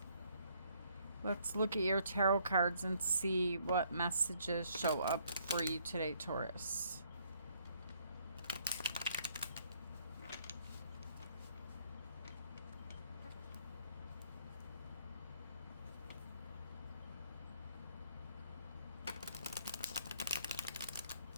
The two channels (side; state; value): both; inverted; correlation -0.67